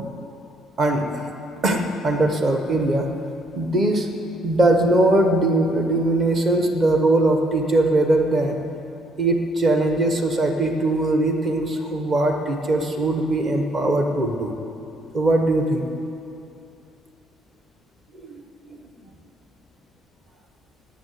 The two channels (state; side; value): normal; both; correlation 0.69